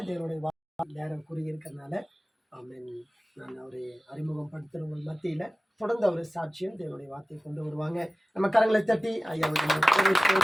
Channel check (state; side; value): normal; both; correlation 0.96